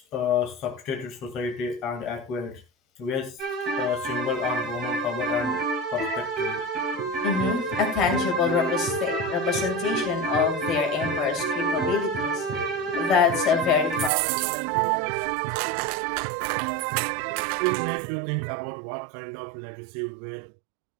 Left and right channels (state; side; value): drops out; left; at 14.1 s